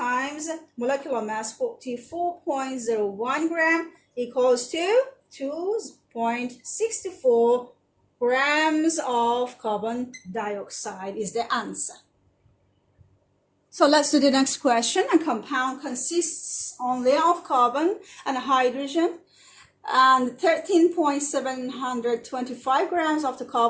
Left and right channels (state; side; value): identical; both; correlation 1.00